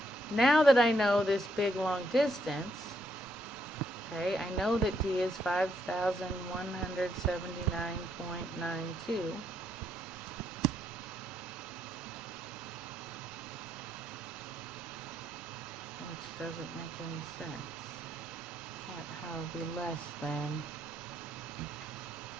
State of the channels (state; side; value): normal; both; correlation 0.75